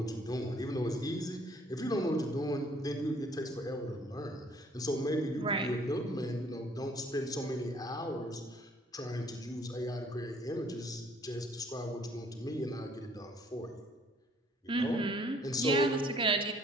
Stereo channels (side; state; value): both; normal; correlation 0.61